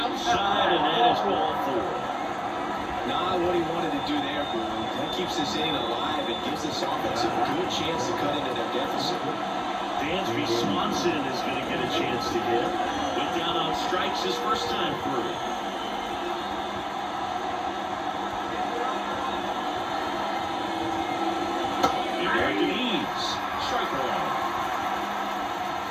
and that is ball 4. Not what he wanted to do there, Boone. That keeps this inning alive and gives this offense a good chance to cut into their deficit. Dansby Swanson is going to get a chance to hit. Went down on strikes his first time through. American Eads. Strike one.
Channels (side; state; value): both; identical; correlation 1.00